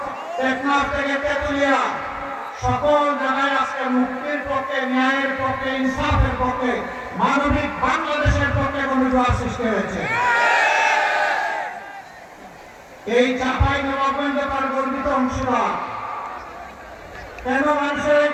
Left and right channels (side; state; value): both; identical; correlation 1.00